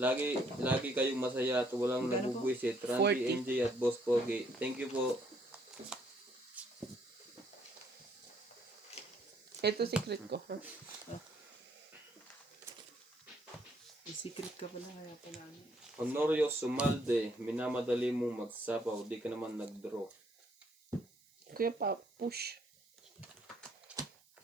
kayong masaya at walang Magkano po? nabubwisit. Randy, 40. NJ at Boss Pogi. Thank you po. Ito secret ko. May secret ka pala, kaya pala. Honorio Sumalde, minamadali mong magsapaw, di ka naman nag-draw. Kuya pa, push.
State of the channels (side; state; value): right; noise; hiss, 30 dB below the sound